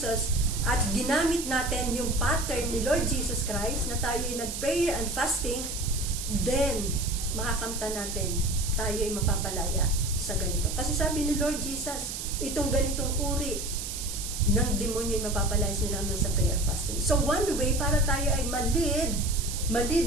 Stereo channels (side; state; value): right; noise; hiss, 6 dB below the sound